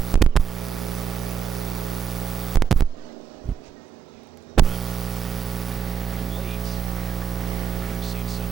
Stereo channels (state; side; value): quieter; left; 7.4 dB